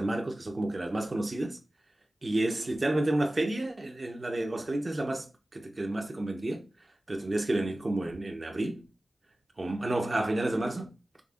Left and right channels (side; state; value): both; normal; correlation 0.97